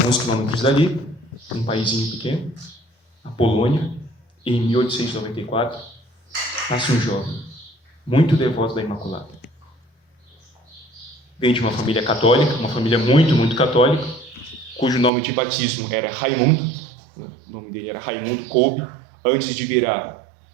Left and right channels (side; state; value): left; drops out; at 15.1 s